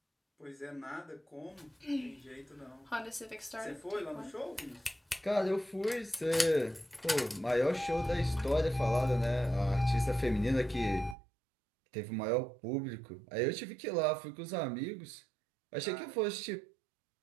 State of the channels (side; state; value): left; drops out; at 11.2 s